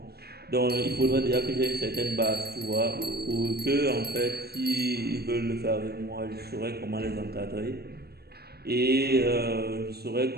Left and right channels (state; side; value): late; left; 0.46 ms